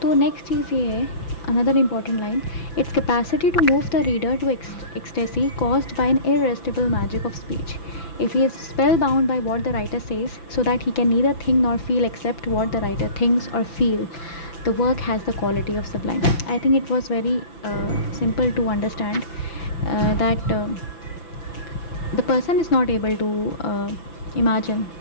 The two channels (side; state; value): right; late; 5.9 ms